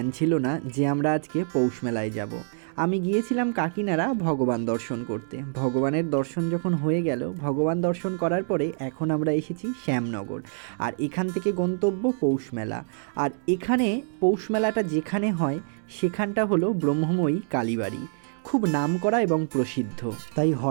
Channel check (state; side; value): silent; left; digital silence